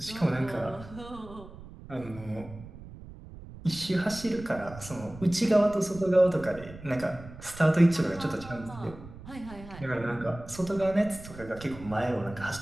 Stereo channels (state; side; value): noise; right; rumble, 16 dB below the sound